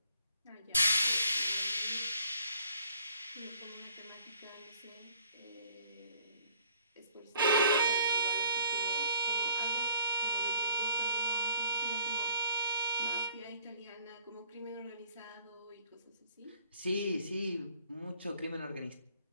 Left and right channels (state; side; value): inverted; both; correlation -0.59